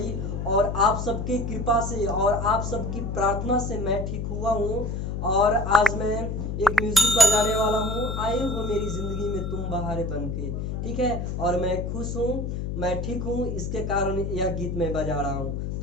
और आप सबकी कृपा से और आप सबकी प्रार्थना से मैं ठीक हुआ हूँ। और आज मैं एक म्यूजिक बजाने वाला हूँ। आए हो मेरी जिंदगी में तुम बहारे बन के, ठीक है। और मैं खुश हूँ, मैं ठीक हूँ, इसके कारण यह गीत मैं बजा रहा हूँ।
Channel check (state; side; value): noise; left; hum, 3 dB below the sound